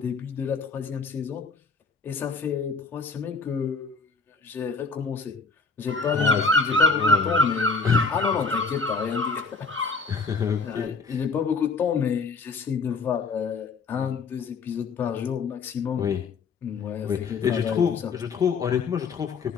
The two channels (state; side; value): quieter; right; 4.6 dB